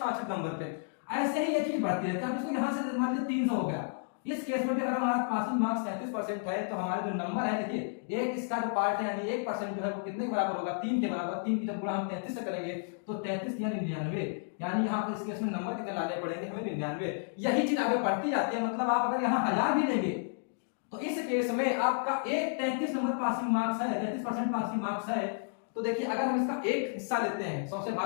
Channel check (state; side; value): silent; right; digital silence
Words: नंबर पे। ऐसे ही ये चीज बढ़ती रहती है। अब इसको यहाँ से मान लीजिए 300 हो गया, इस केस में भी अगर हमारा पासिंग मार्क्स 33% है तो हमारे जो नंबर है, देखिए एक इसका जो पार्ट है यानी 1% जो है वो कितने के बराबर होगा? 3 के बराबर। 3 की जब गुणा हम 33 से करेंगे तो 33 या 99, यानी यहाँ पर इस केस में नंबर कितने लाने पड़ेंगे हमें? 99। यही चीज आगे बढ़ती जाती है। मतलब आप अगर यहाँ 1000 भी लेंगे तो इस केस में आपका एक 33 नंबर पासिंग मार्क्स है, 33% पासिंग मार्क्स है। तो देखिए अगर हम इसका एक हिस्सा लेते हैं 100 से